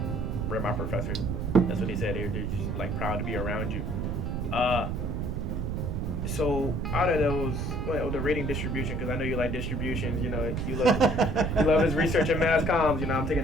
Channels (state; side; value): noise; right; rumble, 1 dB below the sound